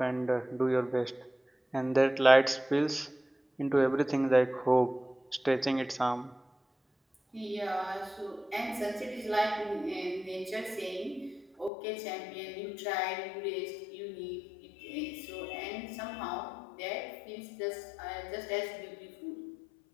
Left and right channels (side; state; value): right; drops out; at 11.7 s